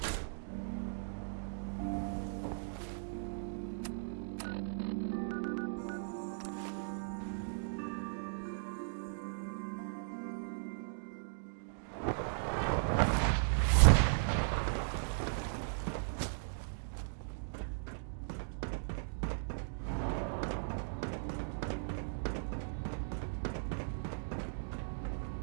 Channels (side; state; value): left; silent; digital silence